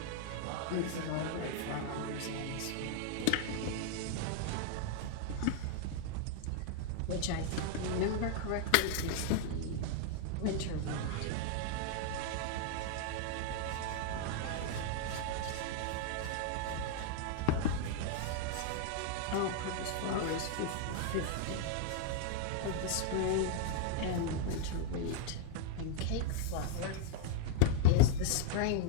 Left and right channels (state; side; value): different; both; correlation 0.00